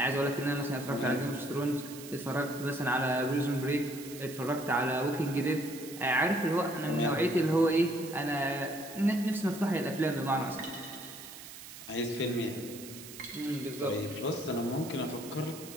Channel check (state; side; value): noise; right; hiss, 14 dB below the sound